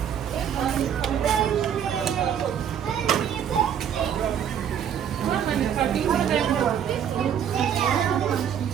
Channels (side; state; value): left; quieter; 8.8 dB